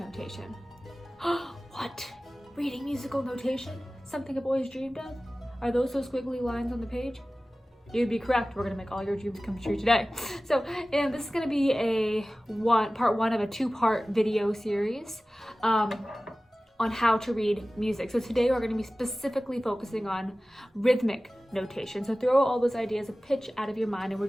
What? Reading musical notation? Something I've always dreamed of? Are those squiggly lines on the page? You'd be correct. We're going to make all your dreams come true today. So, and this is going to be part one of a two-part video series on how to read music. So today we're going to be specifically focusing on rhythmic notation. So throw all those ideas of pitch out of your mind, and we're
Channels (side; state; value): both; normal; correlation 0.97